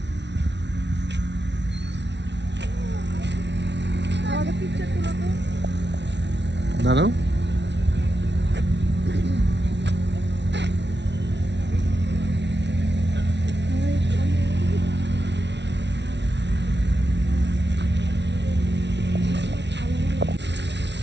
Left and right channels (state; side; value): late; left; 0.51 ms